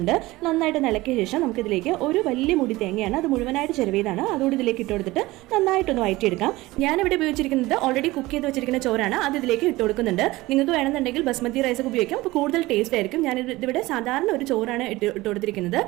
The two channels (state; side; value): quieter; left; 19.4 dB